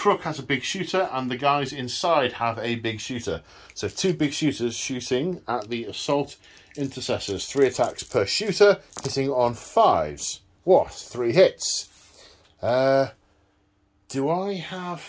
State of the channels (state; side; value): identical; both; correlation 1.00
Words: has a big shooter and the guys inside have a big shooter. So 2 big shooters shooting at the Assault Intercessors. 3 attacks per shooter, hitting on 5s. What? 3 hits. Do I